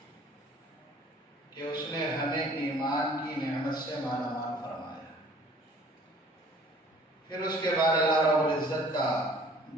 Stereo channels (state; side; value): normal; both; correlation 0.53